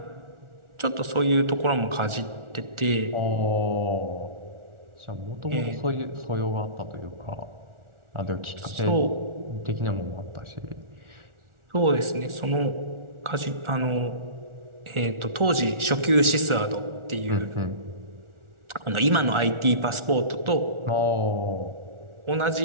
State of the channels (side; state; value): left; late; 1.4 ms